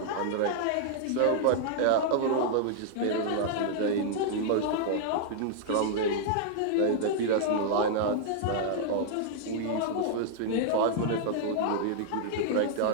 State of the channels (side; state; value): both; different; correlation -0.01